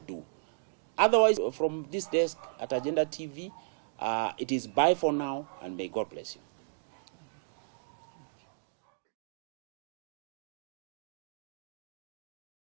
do. Otherwise, from this desk at Agenda TV, it is bye for now, and may God bless you.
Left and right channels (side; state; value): left; silent; digital silence